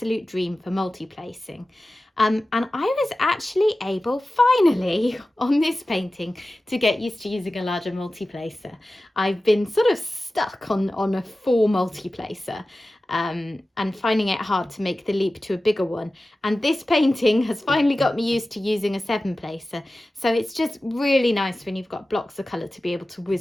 dream for multi-placing. And I was actually able, finally, on this painting, to get used to using a larger multi-placer. I've been sort of stuck on a 4 multi-placer and finding it hard to make the leap to a bigger one. And this painting has finally got me used to using a 7-placer. So it's just really nice when you've got blocks of colour to be able to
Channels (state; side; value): normal; both; correlation 0.95